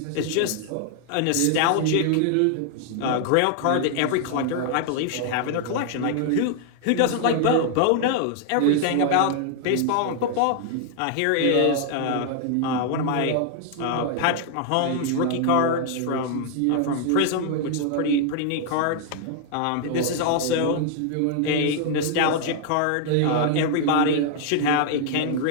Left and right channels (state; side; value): different; both; correlation 0.00